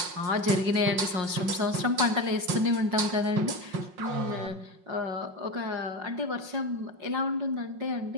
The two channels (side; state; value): left; late; 5.5 ms